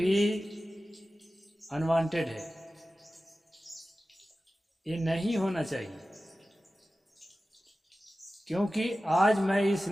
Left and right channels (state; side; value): normal; both; correlation 0.95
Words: अनवांटेड है। ये नहीं होना चाहिए। क्योंकि आज मैं इस